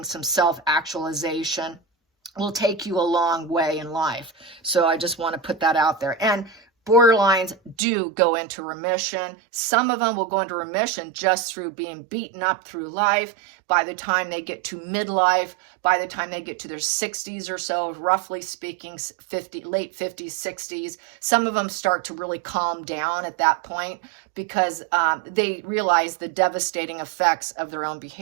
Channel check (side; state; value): left; drops out; at 7.8 s